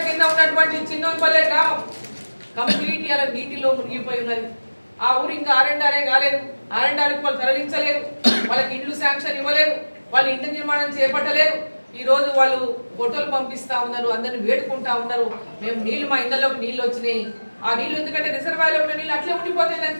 కింద ఉన్నటువంటి చిన్నోన్పల్లె గ్రామం కంప్లీట్ అలా నీటిలో మునిగిపోయి ఉన్నది. ఆ ఊరు ఇంకా ఆర్ఎండ్ఆర్ఏ కాలేదు, ఆర్ఎండ్ఆర్కి వాళ్ళు తరలించలేదు, వాళ్ళకి ఇండ్లు శాంక్షన్ ఇవ్వలేదు, వాళ్ళు ఇంటి నిర్మాణం చేపట్టలేదు. ఈ రోజు వాళ్ళు ఫోటోలు పంపిస్తా ఉన్నారు, అందరిని వేడుకుంటా ఉన్నారు, మేము నీళ్లు మా ఇళ్లలోకి నీళ్ళు వచ్చినాయి. ఆ నీళ్లు ఎందుకంటే రిజర్వాయర్లో ఉన్న నీళ్ళు అట్లే ఉండిపోతే దాన్ని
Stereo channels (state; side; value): inverted; both; correlation -1.00